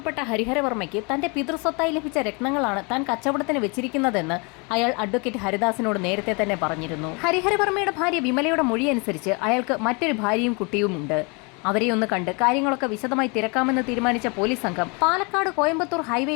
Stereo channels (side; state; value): right; quieter; 31.1 dB